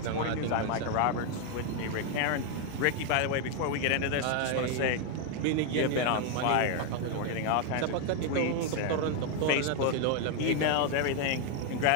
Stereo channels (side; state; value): both; different; correlation 0.01